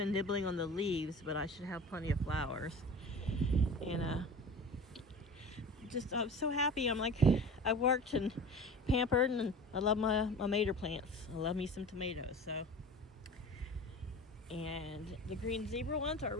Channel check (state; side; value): normal; both; correlation 0.37